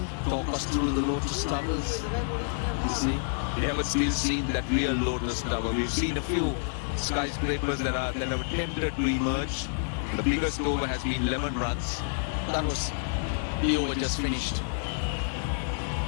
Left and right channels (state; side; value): silent; right; digital silence